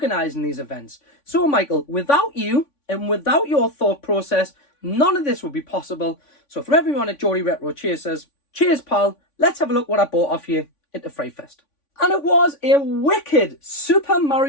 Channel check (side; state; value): right; late; 3.5 ms